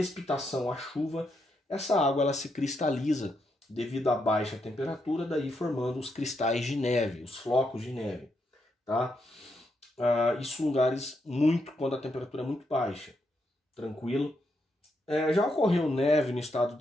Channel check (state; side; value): normal; both; correlation 0.80